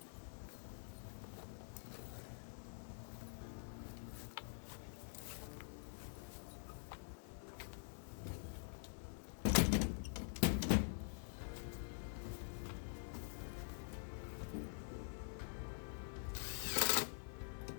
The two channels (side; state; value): right; silent; digital silence